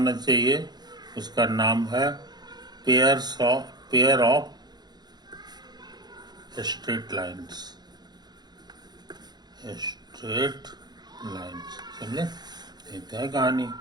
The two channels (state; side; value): late; left; 0.20 ms